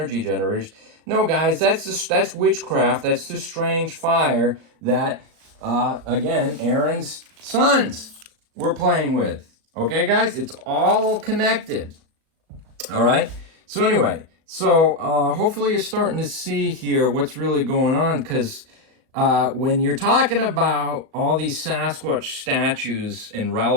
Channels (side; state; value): left; late; 37 ms